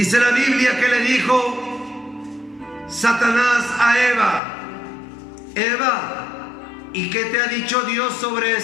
la Biblia que le dijo Satanás a Eva: Eva, ¿y qué te ha dicho Dios sobre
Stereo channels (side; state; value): right; drops out; at 4.4 s